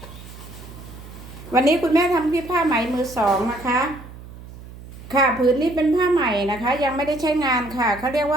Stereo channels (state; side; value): noise; right; hum, 16 dB below the sound